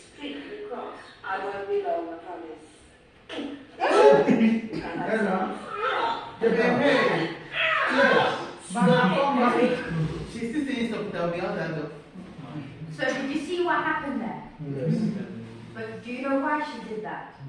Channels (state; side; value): identical; both; correlation 1.00